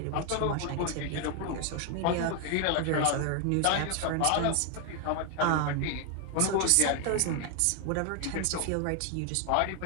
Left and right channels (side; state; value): both; different; correlation 0.00